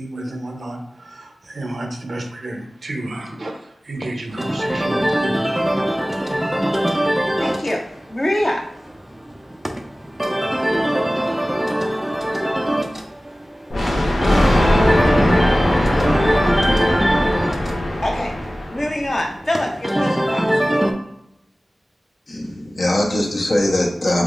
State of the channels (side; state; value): both; normal; correlation 0.97